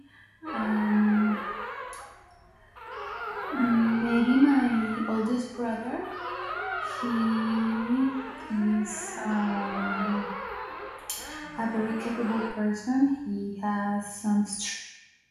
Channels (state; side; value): identical; both; correlation 1.00